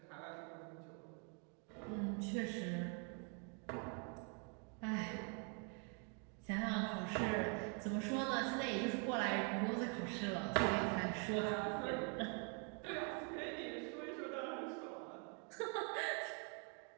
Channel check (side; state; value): left; quieter; 38.0 dB